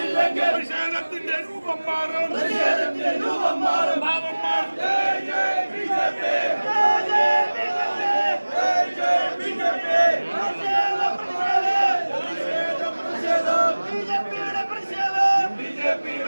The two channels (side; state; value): both; inverted; correlation -1.00